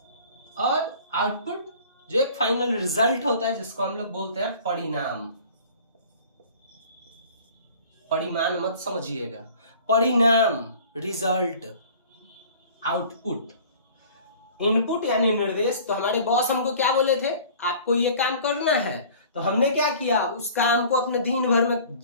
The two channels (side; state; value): both; inverted; correlation -0.47